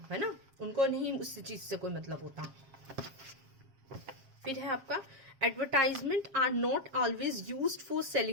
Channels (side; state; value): left; late; 7.4 ms